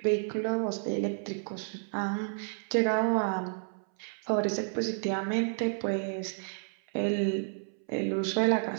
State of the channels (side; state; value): left; silent; 57 dB below the other